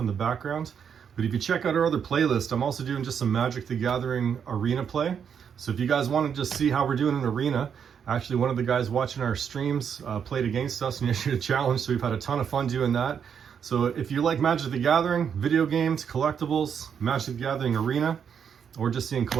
the background. But if you check out our other playlist, I'm also doing just some Magic the Gathering arena play. So if you guys want to just see how we're doing in arena, actually one of the guys watching our streams played against us and issued a challenge, so we've had a ton of fun doing that. So if you like Magic the Gathering, video games, collectibles, Magic the Gathering arena, or just seeing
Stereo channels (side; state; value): left; quieter; 7.5 dB